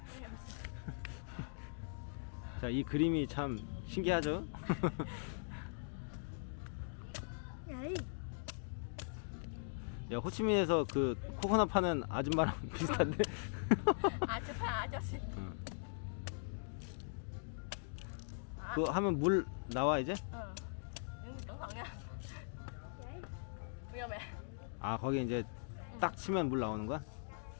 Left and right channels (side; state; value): right; silent; digital silence